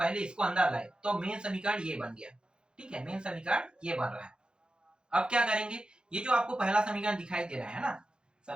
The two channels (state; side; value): late; left; 0.049 ms